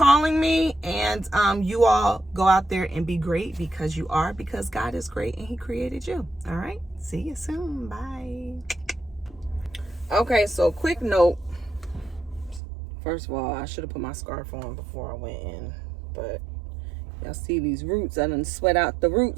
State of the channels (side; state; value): left; drops out; at 12.6 s